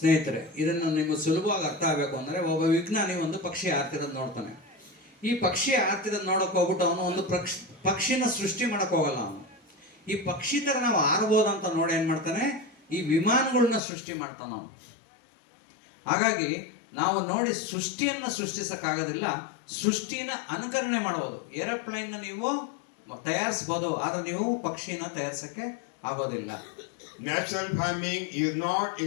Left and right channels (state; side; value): drops out; right; at 13.8 s